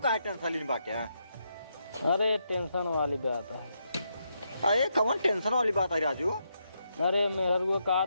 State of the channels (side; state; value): both; inverted; correlation -0.81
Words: टेंशन लेनी बाटे। अरे टेंशन वाली बात है। अरे कौन टेंशन वाली बात है राजू। अरे मेहर को कहा